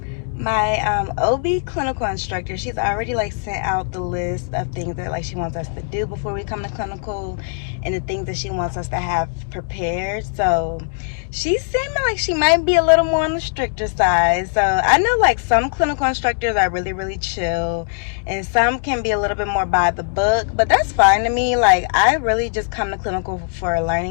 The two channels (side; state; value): right; silent; digital silence